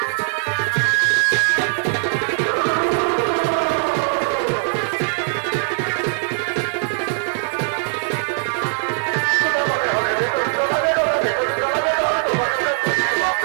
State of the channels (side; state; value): left; silent; digital silence